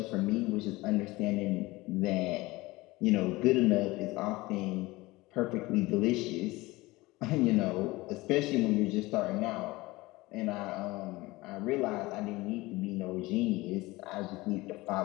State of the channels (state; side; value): quieter; right; 20.8 dB